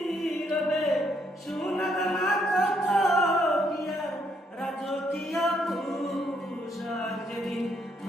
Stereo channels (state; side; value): normal; both; correlation 0.72